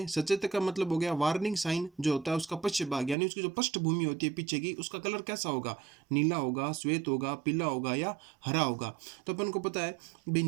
सचेतक का मतलब हो गया वार्निंग साइन जो होता है उसका पश्च भाग, यानी उसकी जो पृष्ठभूमि होती है पीछे की, उसका कलर कैसा होगा, नीला होगा, श्वेत होगा, पीला होगा या हरा होगा। तो अपन को पता है भी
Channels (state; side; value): drops out; left; at 3.2 s